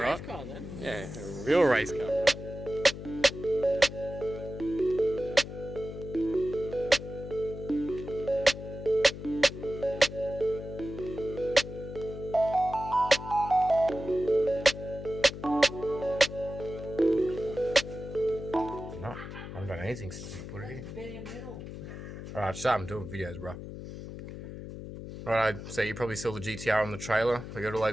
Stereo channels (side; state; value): left; noise; hum, 10 dB below the sound